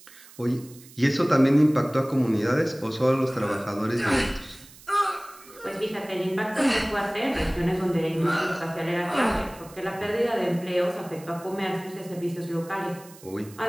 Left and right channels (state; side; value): noise; right; hiss, 21 dB below the sound